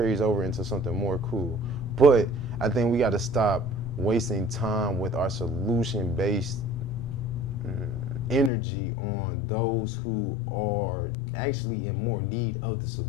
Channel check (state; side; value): drops out; right; at 8.5 s